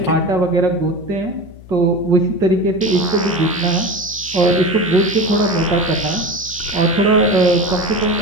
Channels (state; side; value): noise; left; hum, 19 dB below the sound